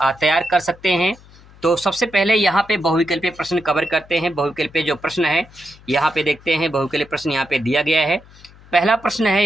तैयार कर सकते हैं। तो सबसे पहले यहाँ पे बहुविकल्पीय प्रश्न कवर करते हैं। बहुविकल्पीय जो प्रश्न है यहाँ पे देखते हैं। बहुविकल्पीय प्रश्न यहाँ पे दिया गया है। पहला प्रश्न है,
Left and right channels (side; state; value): left; noise; hum, 24 dB below the sound